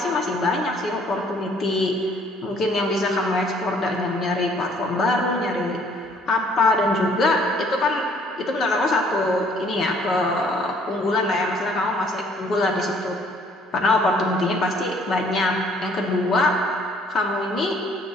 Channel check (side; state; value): both; normal; correlation 0.60